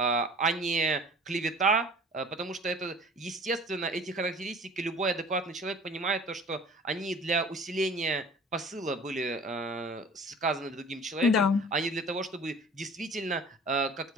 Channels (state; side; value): normal; both; correlation 0.46